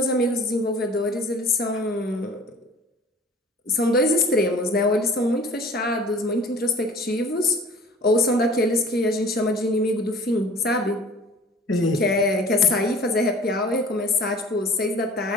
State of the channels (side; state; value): both; normal; correlation 0.46